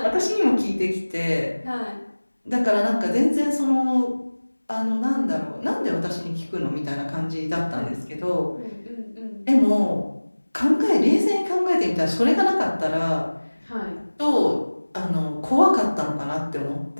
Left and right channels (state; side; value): inverted; both; correlation -1.00